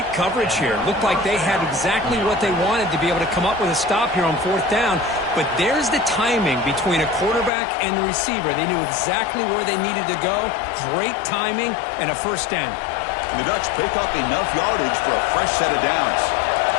coverage here. Looked like they had exactly what they wanted to be able to come up with a stop here on 4th down. But there's the timing between a quarterback and the receiver. They knew exactly where they needed to go. Great timing and a first down. And the Ducks pick up enough yardage for a fresh set of downs.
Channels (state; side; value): drops out; right; at 7.5 s